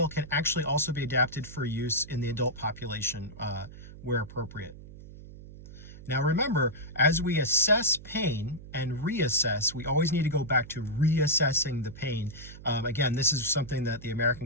can actually also be adapted for use in the adult population where appropriate. Now remember, as we assess pain and reassess, we always need to go back to reassessing the pain. Again, this is something that the American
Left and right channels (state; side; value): noise; right; hum, 16 dB below the sound